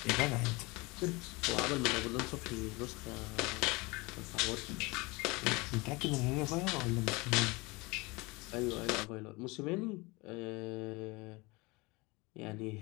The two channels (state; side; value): quieter; right; 24.8 dB